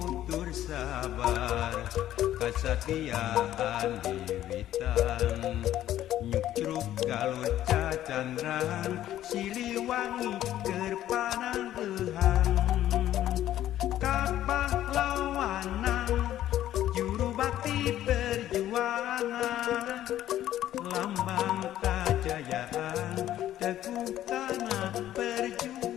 tur sabar kasatiaan wiwitan nyukcruk galur cacandran Siliwangi kerpanang ehang pahlawanan juru bakti perjuangan lambang kejayaan teguh kana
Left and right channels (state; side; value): quieter; right; 12.6 dB